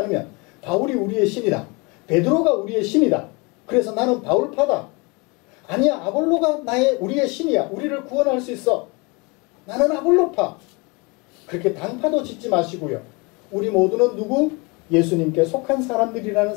바울이 우리의 신이다, 베드로가 우리의 신이다, 그래서 나는 바울파다, 아니야 아볼로가 우리의 신이야, 우리를 구원할 수 있어, 나는 아볼로파, 그렇게 당파도 짓지 마시고요. 우리 모두는 누구? 예수님께 속한 사람들이라는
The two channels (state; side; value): quieter; right; 28.3 dB